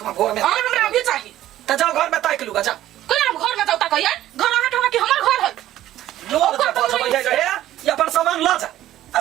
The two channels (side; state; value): left; quieter; 13.5 dB